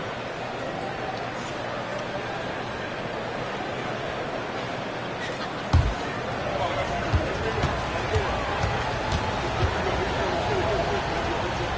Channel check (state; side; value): identical; both; correlation 1.00